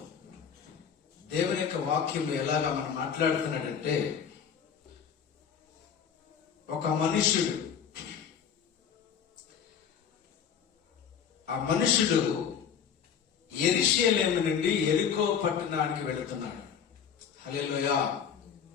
దేవుని యొక్క వాక్యం ఎలాగా మనం మాట్లాడుతున్నాడంటే, ఒక మనుష్యుడు, ఆ మనుషుడు యెరూషలేము నుండి యెరికో పట్టణానికి వెళుతున్నాడు. హల్లెలూయా.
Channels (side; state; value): right; quieter; 7.6 dB